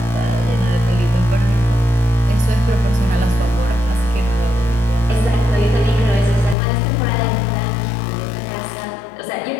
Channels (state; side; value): drops out; right; at 6.6 s